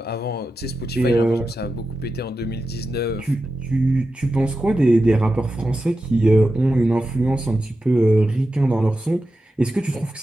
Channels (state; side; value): normal; both; correlation 0.91